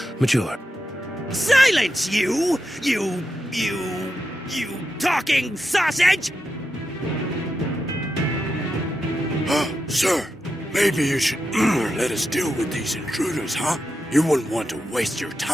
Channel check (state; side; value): normal; both; correlation 0.88